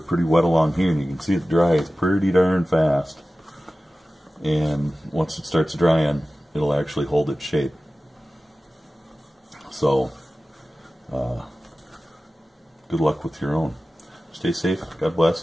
pretty wet along here, and you can see it dries pretty darn fast. And once it starts drying, it'll actually hold its shape. So good luck with your own. Stay safe. God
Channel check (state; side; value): normal; both; correlation 0.96